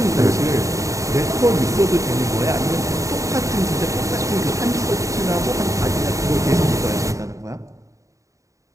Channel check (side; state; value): left; late; 0.16 ms